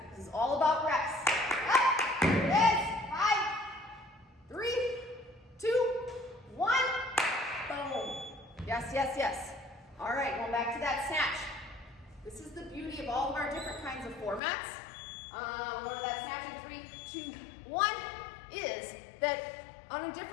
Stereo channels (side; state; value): right; drops out; at 14.4 s